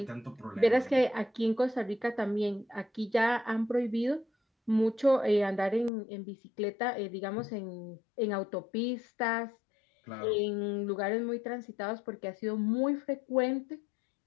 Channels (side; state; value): right; drops out; at 5.9 s